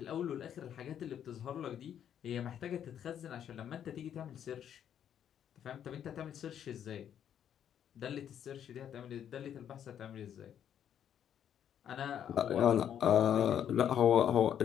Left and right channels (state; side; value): quieter; right; 9.5 dB